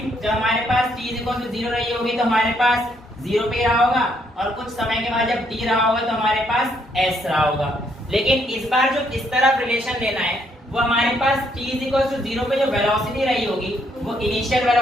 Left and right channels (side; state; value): both; normal; correlation 0.71